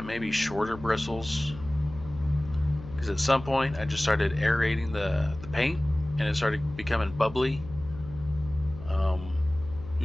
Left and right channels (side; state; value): left; noise; hum, 14 dB below the sound